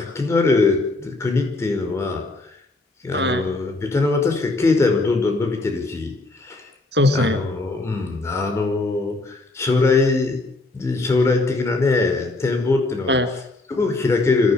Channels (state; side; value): quieter; right; 3.0 dB